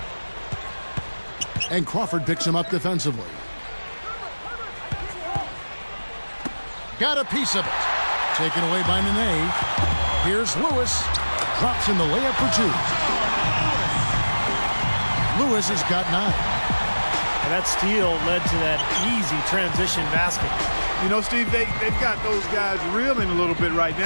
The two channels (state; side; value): inverted; both; correlation -1.00